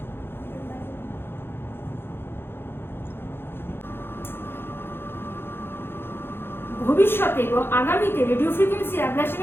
ভবিষ্যতে এবং আগামীতে রেডিও ফ্রিকোয়েন্সি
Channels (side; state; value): right; late; 0.11 ms